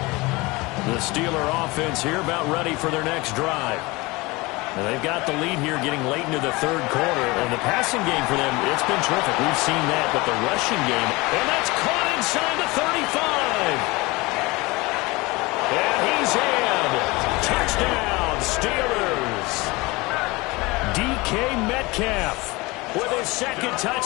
19. The Steeler offense here about ready for their next drive. Now they've got the lead here getting late into the third quarter, and the passing game for them, it's been terrific. We've seen that, but the rushing game, and that's caught inside the 35. And he's in. Touchdown, Steelers. DK Metcalf with his second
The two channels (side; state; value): right; quieter; 23.3 dB